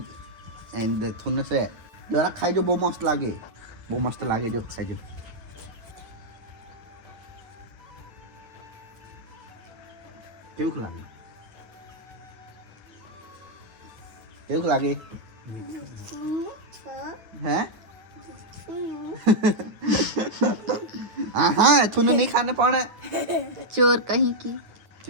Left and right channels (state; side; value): late; left; 9.1 ms